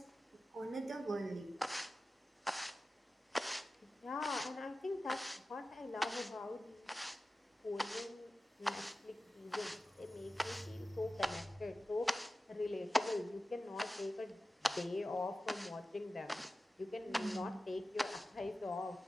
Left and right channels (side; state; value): both; normal; correlation 0.95